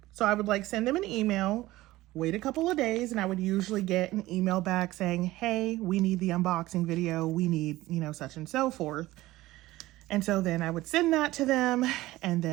So I would like send them an email wait a couple of days, and I would usually get an email back saying, hey, we need the unboxing video. We need, you know, such and so forth. And so then I would send that to them and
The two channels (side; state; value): left; quieter; 17.4 dB